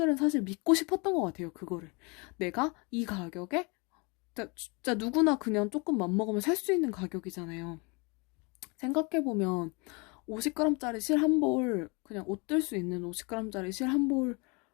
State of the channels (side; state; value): right; quieter; 29.9 dB